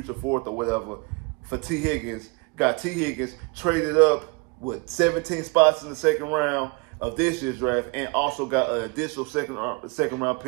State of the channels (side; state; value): left; quieter; 29.9 dB